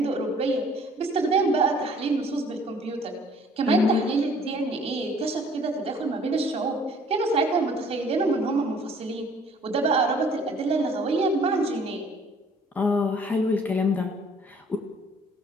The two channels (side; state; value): both; normal; correlation 0.56